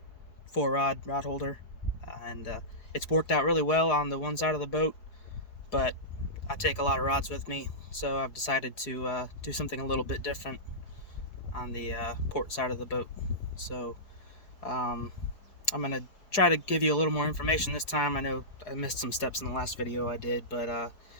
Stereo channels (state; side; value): late; right; 4.7 ms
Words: 4-rod rod holder, and it's worked out really well on the one side of the boat, but I take a lot of rods with me, so I've decided to do something a little bit different on the port side of the boat. So I'm going to try to give you a little more information this time. I know I missed some steps in the last video I did, but